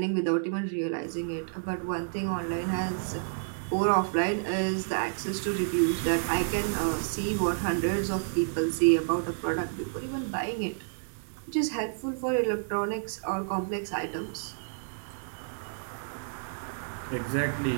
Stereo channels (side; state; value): left; silent; digital silence